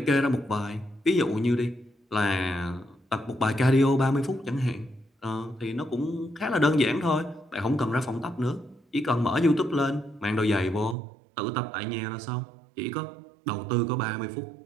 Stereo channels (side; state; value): left; drops out; at 11.0 s